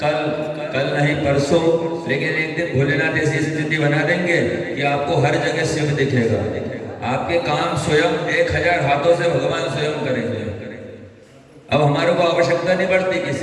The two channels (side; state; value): both; identical; correlation 1.00